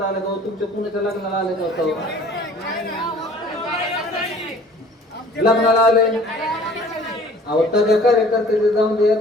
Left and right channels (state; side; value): normal; both; correlation 0.50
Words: आलं का? तुमच्या कुणाच्या लग्नाला आलं का? लग्नाला आले अहो, त्याच्या कार्यकर्त्याचे जाऊन दे,